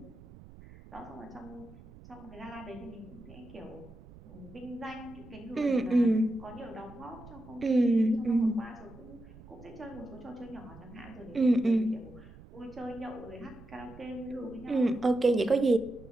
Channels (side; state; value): right; noise; rumble, 19 dB below the sound